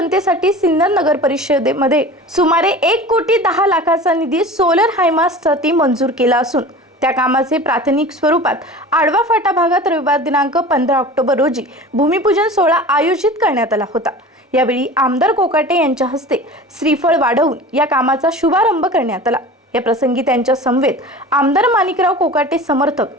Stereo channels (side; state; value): both; normal; correlation 0.37